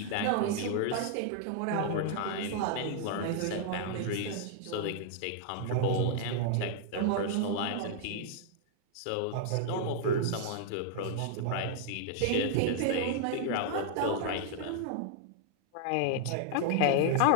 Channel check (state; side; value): different; both; correlation -0.01